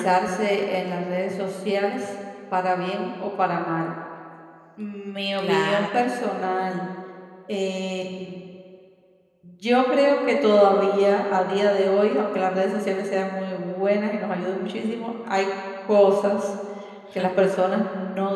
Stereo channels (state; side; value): identical; both; correlation 1.00